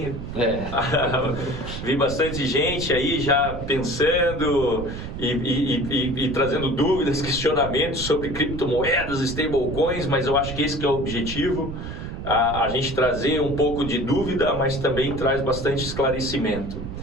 Vi bastante gente aí já pensando e trazendo dúvidas, questionamentos sobre criptomoedas, stablecoins, mas eu acho que esse que é o objetivo, a gente trazer um pouco de dúvida, mas também traz bastante esclarecimento.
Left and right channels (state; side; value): noise; right; rumble, 8 dB below the sound